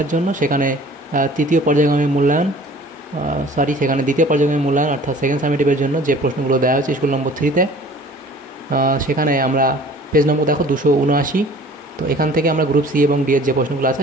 জন্য, সেখানে দ্বিতীয় পর্যায়ক্রমে মূল্যায়ন অর্থাৎ সেকেন্ড সামেটিভের জন্য যে প্রশ্নগুলো দেওয়া হয়েছে স্কুল নম্বর 3-তে, সেখানে আমরা পেজ নম্বর দেখো 279। তো এখান থেকে আমরা গ্রুপ সি এবং ডি এর যে প্রশ্নগুলো আছে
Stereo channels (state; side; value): normal; both; correlation 0.48